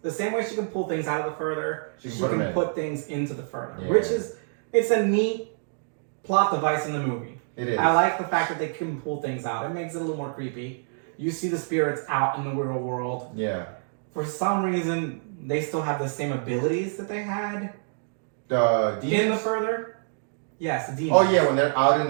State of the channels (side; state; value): left; silent; digital silence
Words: the same way she can pull things out of the further. She can put things into the further, which is it's a neat plot device in the movie. It is. I like the fact that they can pull things out. It makes it a little more creepy. You see the spirits out in the real world. Yeah. For some reason, they still have the same abilities that they had. The demons? In the further. Yes, the demons. Oh yeah, when they're out in